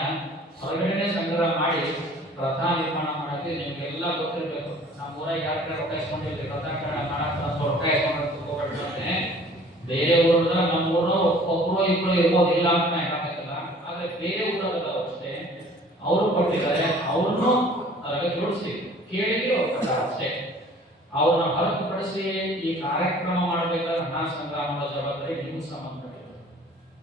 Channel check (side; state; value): both; normal; correlation 0.51